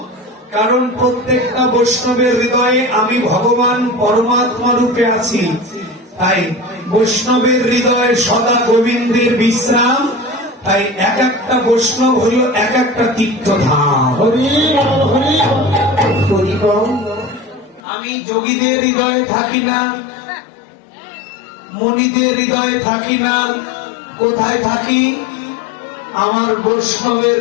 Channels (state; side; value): drops out; right; at 17.8 s